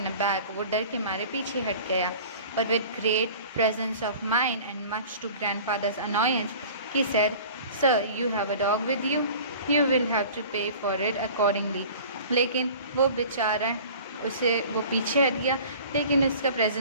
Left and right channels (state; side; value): inverted; both; correlation -0.44